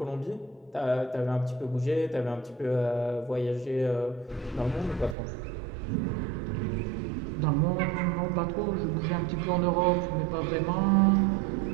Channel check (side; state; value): left; drops out; at 5.2 s